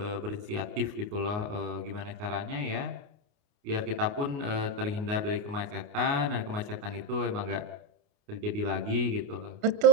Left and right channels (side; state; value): left; late; 29 ms